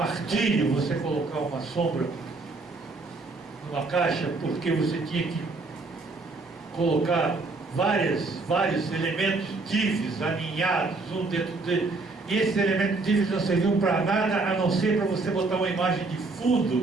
você colocar uma sombra numa caixa, porque você tinha que colocar vários elementos divs alinhados um dentro dele, e esses elementos divs não serviam para nada a não ser para você botar uma imagem de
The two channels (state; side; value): quieter; left; 3.6 dB